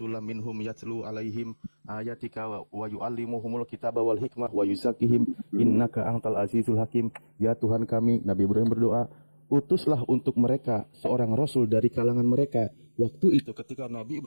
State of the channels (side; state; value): both; inverted; correlation -1.00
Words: minhum yatlu alaihim ayatika wa yu'allimuhumul kitaba wal hikmah wa yuzakkihim innaka antal azizul hakim. Ya Tuhan kami, Nabi Ibrahim berdoa, utuslah untuk mereka seorang rasul dari kalangan mereka. Waktu itu ketika Nabi